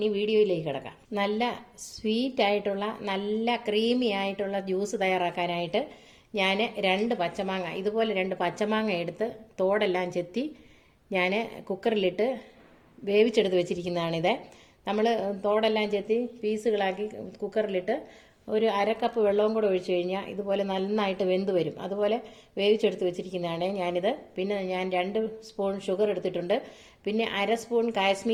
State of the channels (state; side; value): identical; both; correlation 1.00